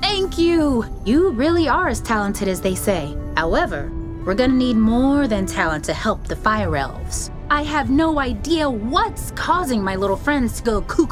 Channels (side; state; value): both; identical; correlation 1.00